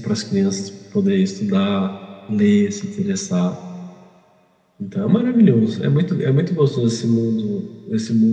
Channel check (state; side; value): identical; both; correlation 1.00